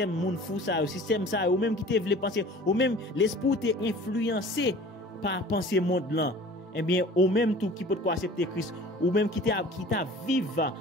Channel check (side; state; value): both; normal; correlation 0.45